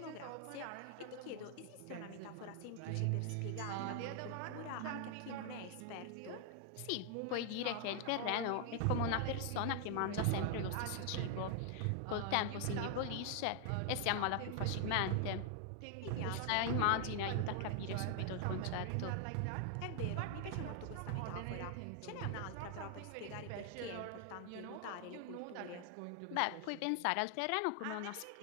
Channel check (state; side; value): different; both; correlation 0.00